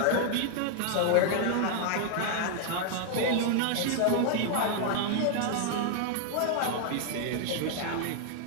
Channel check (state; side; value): different; both; correlation 0.00